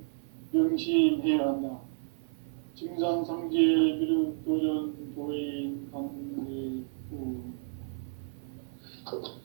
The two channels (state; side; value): silent; left; digital silence